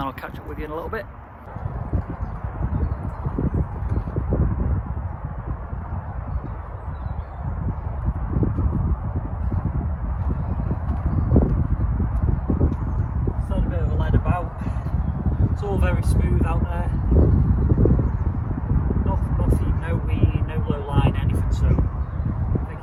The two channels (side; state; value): both; identical; correlation 1.00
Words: I'll catch up with you in a little bit. It's all very smooth out there. Nothing, no weed, no low line, anything. So I think